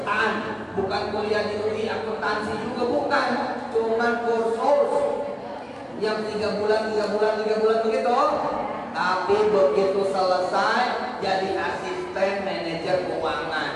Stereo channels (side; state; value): both; identical; correlation 1.00